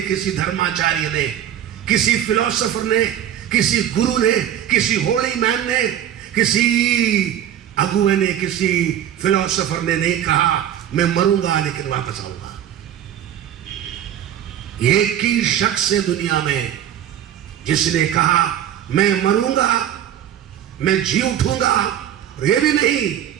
किसी धर्माचार्य ने, किसी फिलोसोफर ने, किसी गुरु ने, किसी होली मैन ने, किसी अगुए ने, किसी फिलोसोफर ने नहीं कहा मैं मरूंगा लेकिन वापस आऊंगा। एक ही शख्स है दुनिया में जिसने कहा मैं मरूंगा, मैं जी उठूंगा, और ये भी नहीं,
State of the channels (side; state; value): left; quieter; 10.6 dB